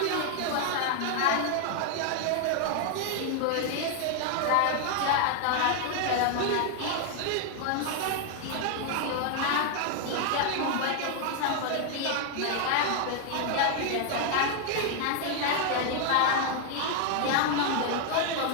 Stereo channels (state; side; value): different; both; correlation 0.00